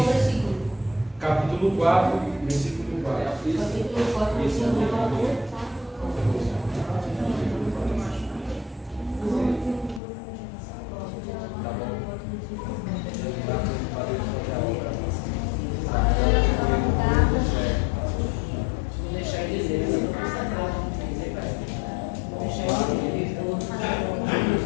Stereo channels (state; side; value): drops out; right; at 10.0 s